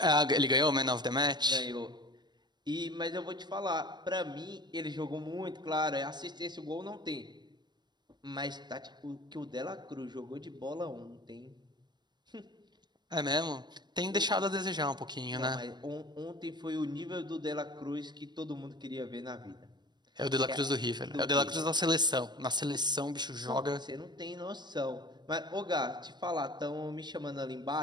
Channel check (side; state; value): left; late; 0.21 ms